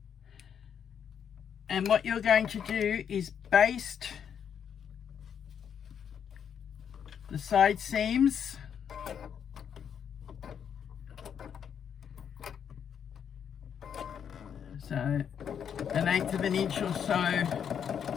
And what you're going to do is baste the side seams so 1/8 of an inch or so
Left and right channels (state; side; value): quieter; right; 8.0 dB